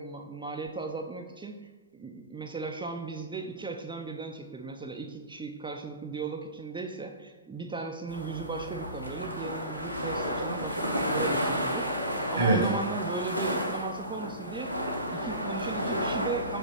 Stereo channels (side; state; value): both; inverted; correlation -0.36